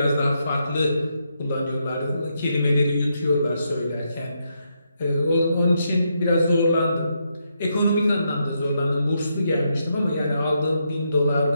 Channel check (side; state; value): both; inverted; correlation -0.80